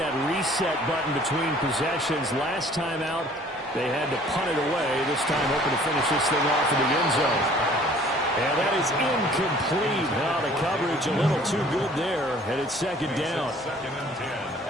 reset button between possessions. Last time out, they had to punt it away. This time, hoping to finish this thing off in the end zone. And that is incomplete. Now the coverage a little too good there, and it's second down.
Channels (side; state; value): both; normal; correlation 0.54